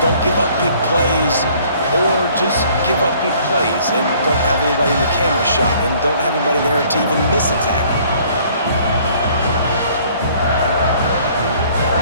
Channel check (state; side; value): inverted; both; correlation -0.58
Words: don't give up big plays, or just give up big plays and don't have anybody in the camera shot and don't have anybody there to even miss a tackle.